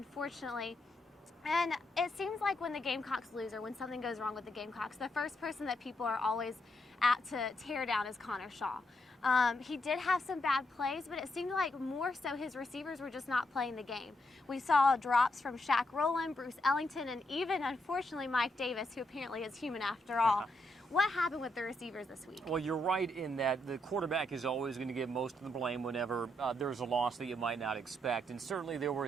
And it seems like when the Gamecocks lose or when something goes wrong with the Gamecocks, the first person that people are always apt to tear down is Connor Shaw. He did have some bad plays, but it seemed like more so his receivers were just not playing the game. We saw drops from Shaq Rowland, Bruce Ellington, and even, unfortunately, Mike Davis, who apparently is human after all. What happened with the receivers this week? Well, you're right in that the quarterback is always going to get most of the blame whenever there's a loss that you might not expect. And certainly there were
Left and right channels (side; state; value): both; normal; correlation 0.79